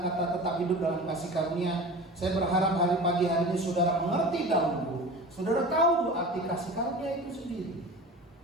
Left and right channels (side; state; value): both; normal; correlation 0.35